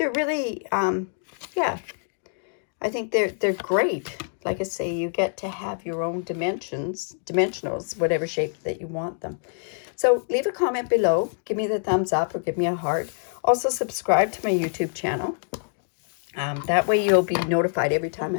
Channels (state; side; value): silent; right; digital silence